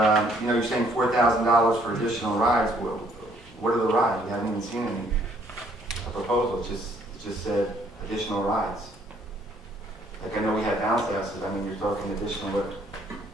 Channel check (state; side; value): normal; both; correlation 0.64